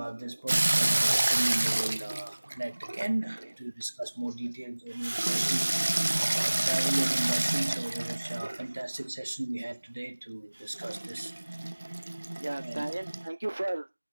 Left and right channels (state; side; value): inverted; both; correlation -1.00